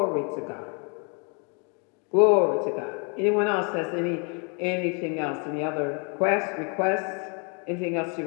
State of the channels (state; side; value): quieter; right; 36.6 dB